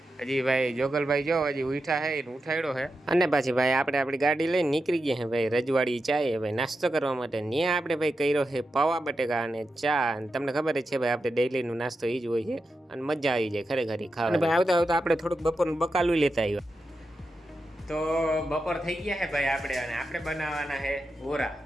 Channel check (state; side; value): normal; both; correlation 0.89